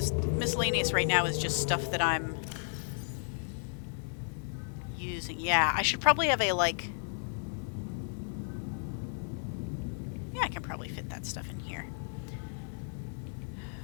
miscellaneous right now is just stuff that I'm using. Yeah, I should probably have a, like... yeah, I can probably fit that stuff in here.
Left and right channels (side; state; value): right; silent; 55 dB below the other